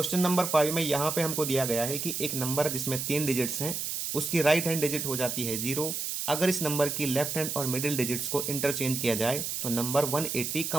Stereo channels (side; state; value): right; noise; hiss, 3 dB below the sound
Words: नंबर 5 में यहाँ पे हमको दिया गया है कि एक नंबर जिसमें 3 डिजिट्स हैं उसकी राइट हैंड डिजिट हो जाती है 0। अगर इस नंबर की लेफ्ट हैंड और मिडिल डिजिट्स को इंटरचेंज किया जाए तो नंबर 180